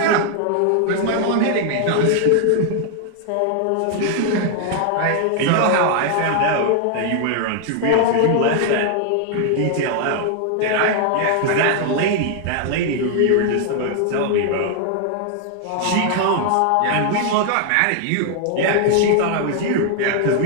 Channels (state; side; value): different; both; correlation 0.00